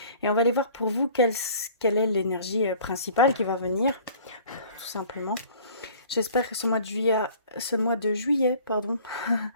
Et on va aller voir pour vous quelle est l'énergie principale qui va venir, tout simplement. J'espère que ce mois de juillet,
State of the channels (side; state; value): both; inverted; correlation -0.49